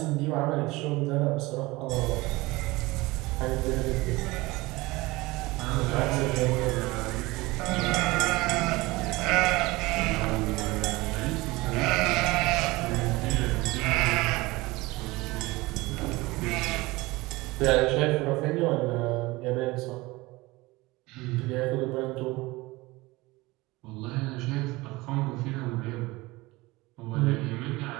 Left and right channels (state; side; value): quieter; left; 21.4 dB